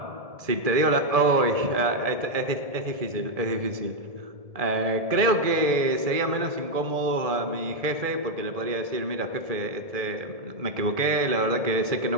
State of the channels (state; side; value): late; left; 1.7 ms